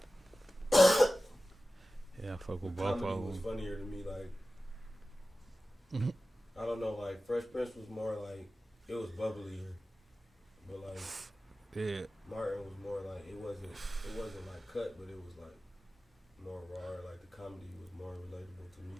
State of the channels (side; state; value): both; normal; correlation 0.95